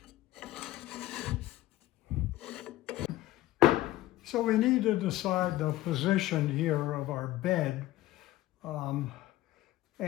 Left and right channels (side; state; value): right; quieter; 16.0 dB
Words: So we need to decide the position here of our bed